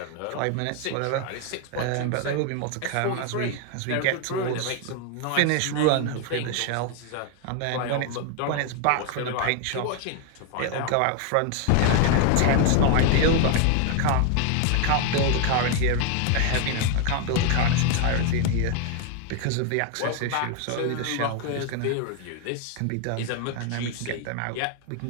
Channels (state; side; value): different; both; correlation 0.01